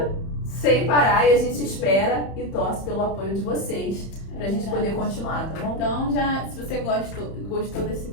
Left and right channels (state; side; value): late; right; 31 ms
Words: sem parar, e a gente espera e torce pelo apoio de vocês. Pra gente poder continuar, tá bom? Então, se você gostou desse